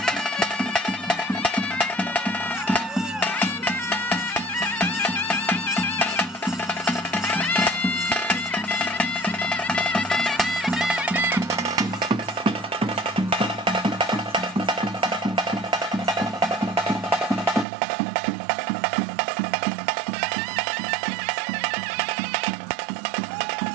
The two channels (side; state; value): left; drops out; at 17.7 s